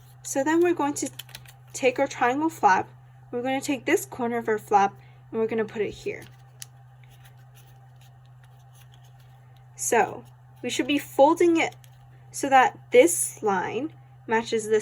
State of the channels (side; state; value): both; identical; correlation 1.00